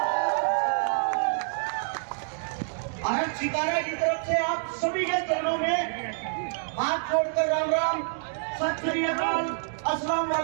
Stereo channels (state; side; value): silent; left; digital silence